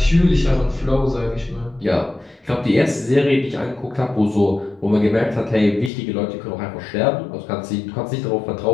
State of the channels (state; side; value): drops out; right; at 5.9 s